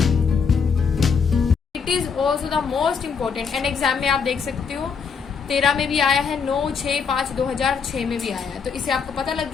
also the most important and exam में आप देख सकते हो 13 में भी आया है, 9/6/5/2006 में भी आया है। तो इससे आपको पता लग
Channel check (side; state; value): right; quieter; 5.8 dB